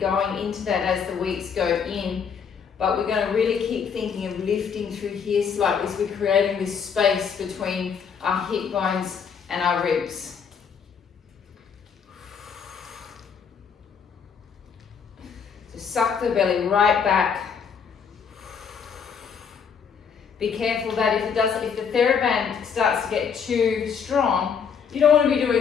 into that as the weeks go in. But we're going to really keep thinking of lifting through here slightly. So we're creating this space between our hip bones and our ribs. So suck the belly right back. Be careful that if the TheraBand starts to get too strong, you don't want to be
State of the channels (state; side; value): quieter; right; 6.7 dB